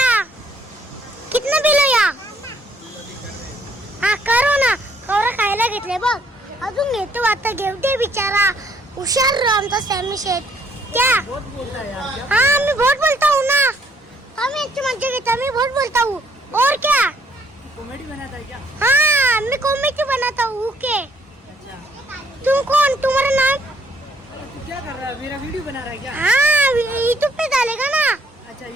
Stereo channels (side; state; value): both; normal; correlation 0.66